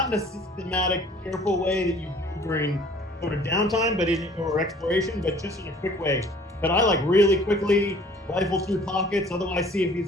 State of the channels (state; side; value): normal; both; correlation 0.53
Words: in a systematic, careful way that you do during sort of downtime, or exploration, but just in a quick way, could I like really quickly rifle through pockets, otherwise see if